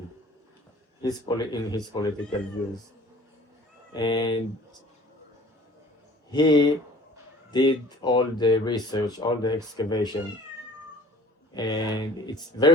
in his political views. And he did all the research, all the excavation, and it's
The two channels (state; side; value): normal; both; correlation 0.49